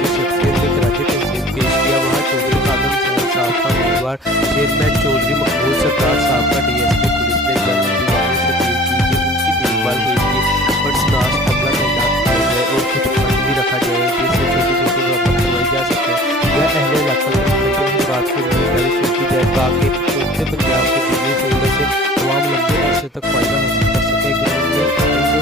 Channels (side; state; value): both; normal; correlation 0.46